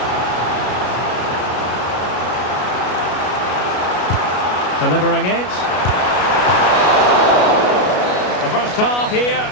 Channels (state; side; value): late; right; 33 ms